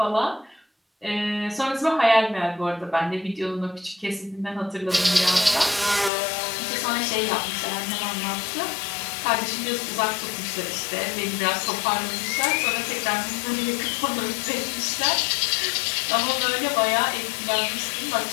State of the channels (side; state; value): right; drops out; at 6.1 s